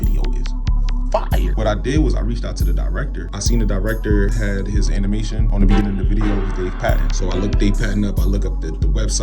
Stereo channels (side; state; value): both; identical; correlation 1.00